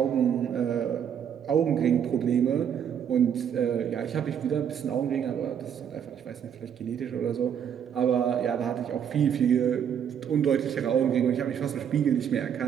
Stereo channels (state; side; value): quieter; left; 8.5 dB